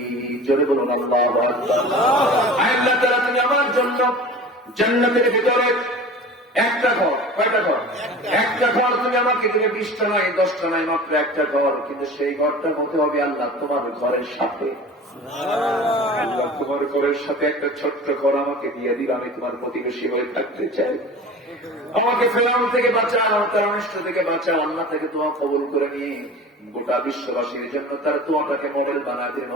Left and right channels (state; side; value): normal; both; correlation 0.38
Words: জোরে বলুন আল্লাহু আকবার। আল্লাহ তাআলা তুমি আমার জন্য জান্নাতের ভিতরে একটা ঘর, কয়টা ঘর? একটা ঘর তুমি আমাকে দিলে, 20টা নয় 10টা নয়, মাত্র একটা ঘর। কিন্তু সেই ঘরটার মধ্যে হবে আল্লাহ তোমার ঘরের সাথে। আল্লাহ তোমার ঘরের সাথে একটা ছোট্ট ঘর আমাকে দিয়ে দিল, আমি তোমার প্রতিবেশী হয়ে থাকতে চাই। আমাকে ফেরাউন থেকে বাঁচাও, তার অনিষ্ট থেকে বাঁচাও। আল্লাহ থেকে দোয়া কবুল করে নিয়ে গোটা বিশ্ববাসীর জন্য তার দোয়াটাকে মডেল বানায় দিলেন।